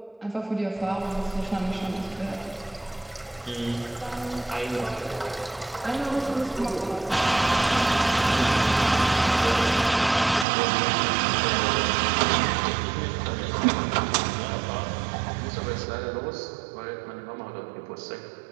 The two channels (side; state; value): left; drops out; at 10.5 s